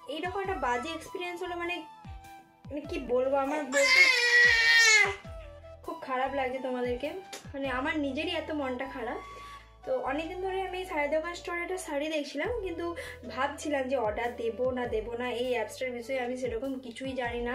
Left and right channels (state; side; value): identical; both; correlation 1.00